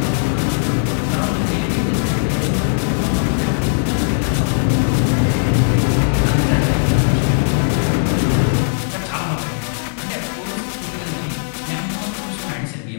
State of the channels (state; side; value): silent; right; digital silence